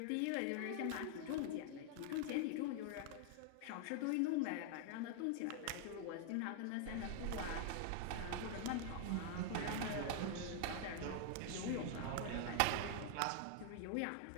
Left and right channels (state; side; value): different; both; correlation 0.00